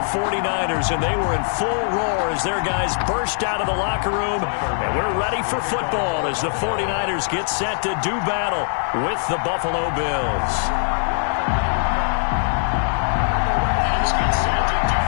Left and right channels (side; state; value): right; silent; 65 dB below the other